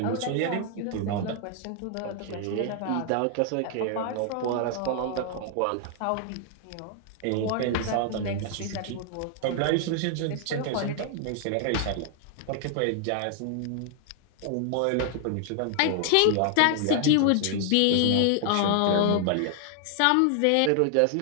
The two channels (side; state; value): both; different; correlation 0.00